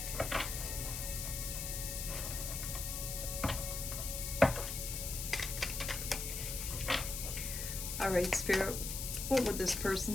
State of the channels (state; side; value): noise; left; hiss, 4 dB below the sound